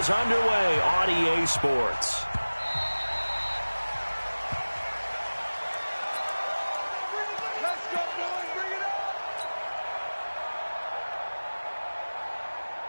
underway on EA Sports.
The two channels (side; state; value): both; inverted; correlation -1.00